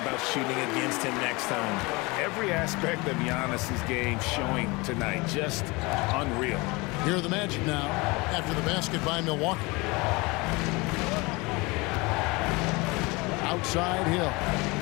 shooting against him next time. Every aspect of Giannis' game showing tonight. Just unreal. Here are the Magic now after the basket by Milwaukee. Outside Hill.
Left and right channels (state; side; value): quieter; right; 25.0 dB